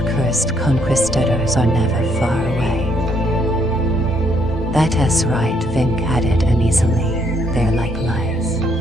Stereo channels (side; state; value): both; normal; correlation 0.71